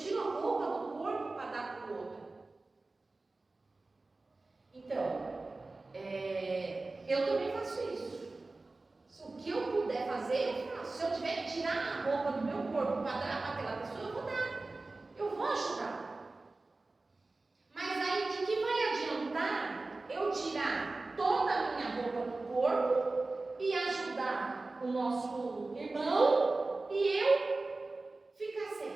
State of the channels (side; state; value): left; quieter; 3.3 dB